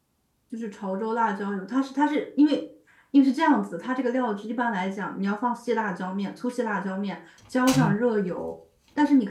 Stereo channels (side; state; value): both; identical; correlation 1.00